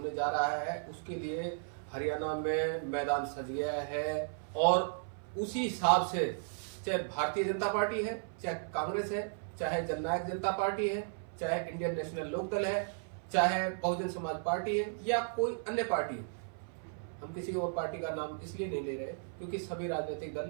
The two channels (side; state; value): left; silent; 54 dB below the other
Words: जा रहा है, उसके लिए हरियाणा में मैदान सज गया है और उसी हिसाब से चाहे भारतीय जनता पार्टी है, चाहे कांग्रेस है, चाहे जननायक जनता पार्टी है, चाहे इंडियन नेशनल लोकदल है, चाहे बहुजन समाज पार्टी है या कोई अन्य पार्टी है। हम किसी और पार्टी का नाम इसलिए नहीं ले रहे क्योंकि सभी राजनीतिक